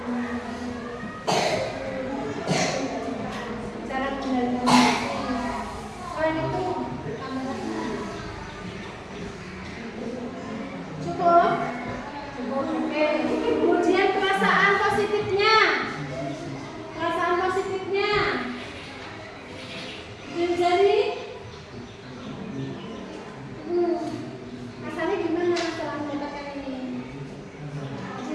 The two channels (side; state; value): both; identical; correlation 1.00